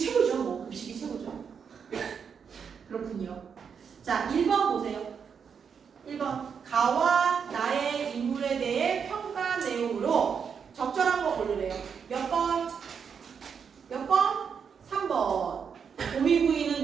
뭐 급식이 최고죠. 그렇군요. 자 1번 보세요. 1번 가와 나의 인물에 대해 평가 내용으로 적절한 거 고르래요. 몇 번? 몇 번? 3번.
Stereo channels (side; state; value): left; quieter; 6.7 dB